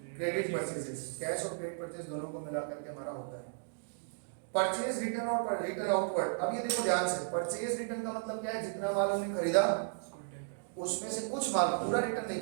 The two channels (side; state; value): left; silent; digital silence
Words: credit purchases. Cash और क्रेडिट परचेज दोनों को मिला करके हमारा होता है परचेज रिटर्न और रिटर्न आउटवर्ड। अब ये देखो ध्यान से, परचेज रिटर्न का मतलब क्या है, जितना माल हमने खरीदा उसमें से कुछ माल, पूरा रिटर्न नहीं